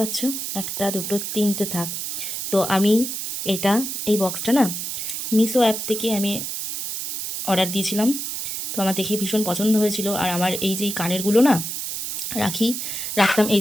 পাচ্ছ, একটা দুটো তিনটে থাক। তো আমি এটা, এই বক্সটা না মিশো অ্যাপ থেকে আমি অর্ডার দিয়েছিলাম। তো আমার দেখে ভীষণ পছন্দ হয়েছিল। আর আমার এই যে কানেরগুলো না রাখতাম, এই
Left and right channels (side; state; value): right; noise; hiss, 4 dB below the sound